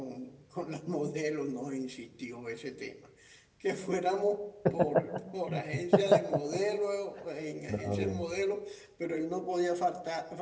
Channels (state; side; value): identical; both; correlation 1.00